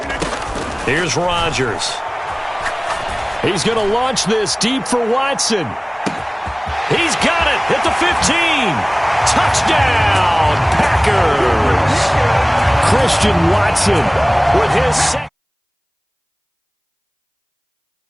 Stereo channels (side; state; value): both; identical; correlation 1.00